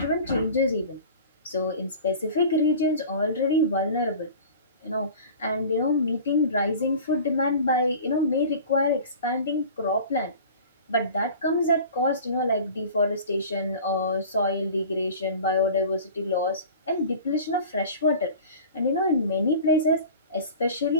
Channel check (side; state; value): both; inverted; correlation -0.40